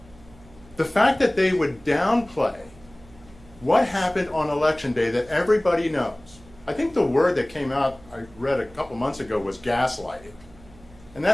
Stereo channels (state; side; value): noise; right; hum, 23 dB below the sound